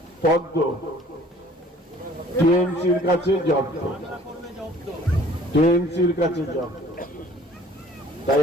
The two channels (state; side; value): normal; both; correlation 0.53